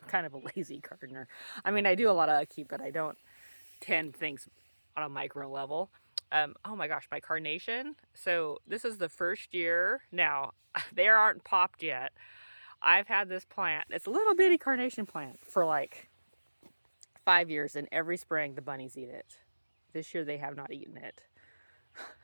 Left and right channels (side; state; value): both; inverted; correlation -1.00